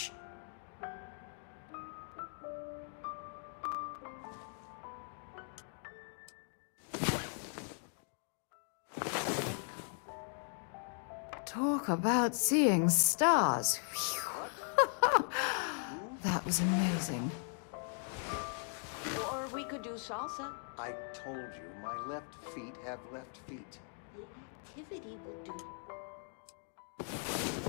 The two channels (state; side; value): silent; right; 52 dB below the other